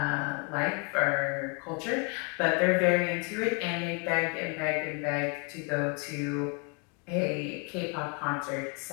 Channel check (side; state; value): right; quieter; 35.6 dB